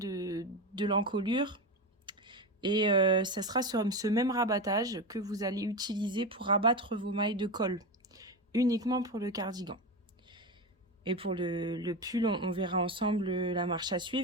l'encolure. Et ça sera sur ce même rabattage que vous allez utiliser pour rabattre vos mailles de col, uniquement pour le cardigan. Et pour le pull, on verra ensemble la marche à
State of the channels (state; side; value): normal; both; correlation 0.19